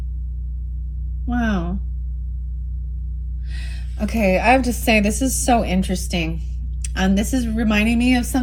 Wow. Okay, I have to say, this is so interesting. This is reminding me of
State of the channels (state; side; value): identical; both; correlation 1.00